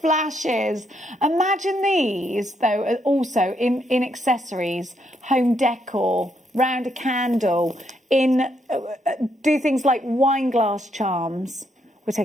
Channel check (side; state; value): both; normal; correlation 0.76